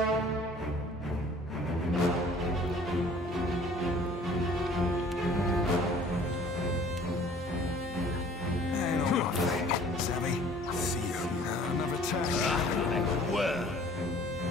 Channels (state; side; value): normal; both; correlation 0.52